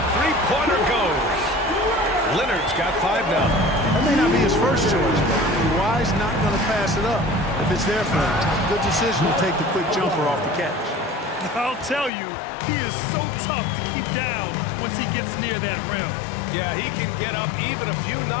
three-pointer goes. Leonard's got 5 now. That may not be his first choice, but Kawhi's not going to pass it up if it's there for him. Good decision to take the quick jumper off the catch. I'll tell you, he is so tough to keep down once he gets near that rim. Yeah, he can get up even a few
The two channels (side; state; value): right; drops out; at 12.1 s